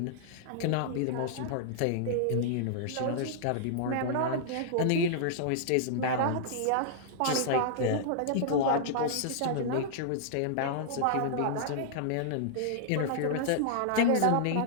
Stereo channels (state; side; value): different; both; correlation -0.01